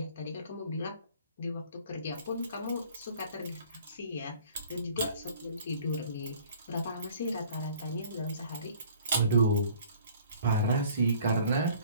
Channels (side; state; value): both; inverted; correlation -0.53